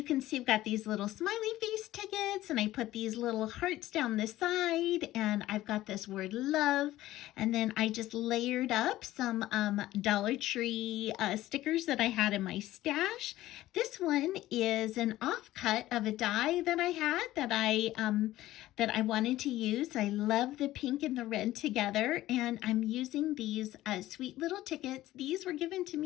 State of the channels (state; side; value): quieter; right; 15.5 dB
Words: can see I've got these little smiley face tickets, and I put these little hearts down the side, and I've got this word love. And then I just layered up some Dollar Tree stickers that I had in my stash. This one is an offcut of a die that I had that I wanted to use. I love the pink and the red together, and I'm using these sweet little tickets. These were given to